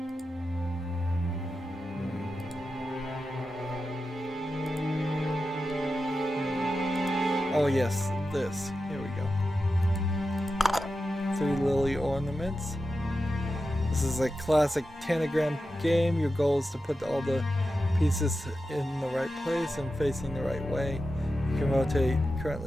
Oh yes, this. Here we go. 3 lily ornaments. This is a classic tanagram game. Your goal is to put all the pieces in the right place and facing the right way. You can rotate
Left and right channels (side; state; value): both; normal; correlation 0.91